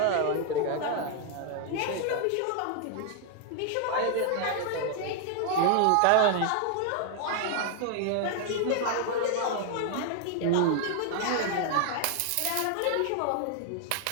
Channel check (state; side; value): different; both; correlation 0.00